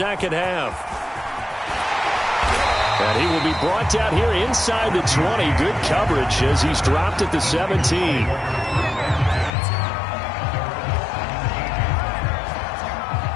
half. And he will be brought down here inside the 20. Good coverage as he's dropped at the 17.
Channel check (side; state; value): right; drops out; at 9.5 s